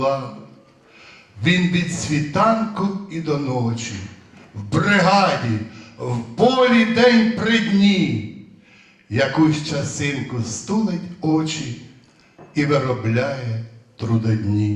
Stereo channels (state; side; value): identical; both; correlation 1.00